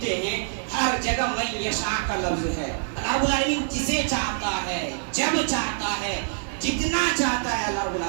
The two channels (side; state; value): left; silent; digital silence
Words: ہیں ہر جگہ من یشاء کا لفظ ہے. اللہ رب العالمین جسے چاہتا ہے، جب چاہتا ہے، جتنا چاہتا ہے اللہ رب